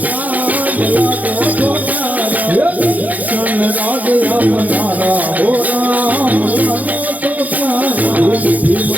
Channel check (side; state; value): left; late; 0.078 ms